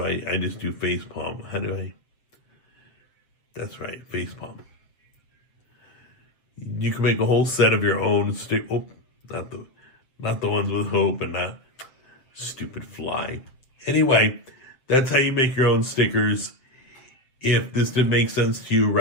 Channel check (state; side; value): late; right; 7.8 ms